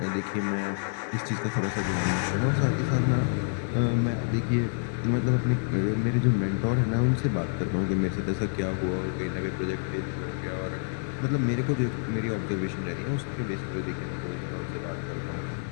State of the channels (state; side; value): silent; right; digital silence